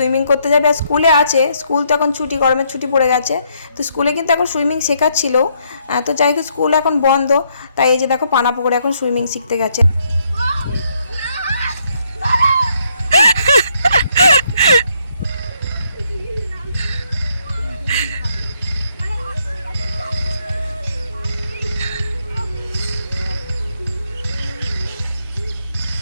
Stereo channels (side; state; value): both; inverted; correlation -0.73